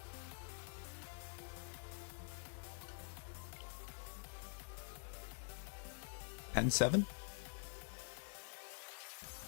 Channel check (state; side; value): silent; right; digital silence